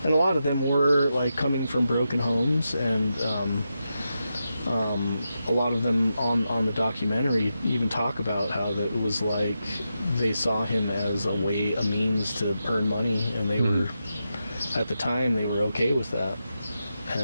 and a lot of them were like coming from broken homes, and a lot of them on the documentary even talk about how that it was like they saw him as a means to earn money, and they were, at the time, they were okay with that.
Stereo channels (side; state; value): both; inverted; correlation -0.88